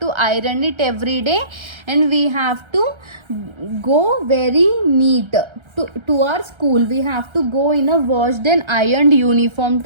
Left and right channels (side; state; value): left; late; 1.3 ms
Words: iron it every day, and we have to go very neat to our school. We have to go in a washed and ironed uniform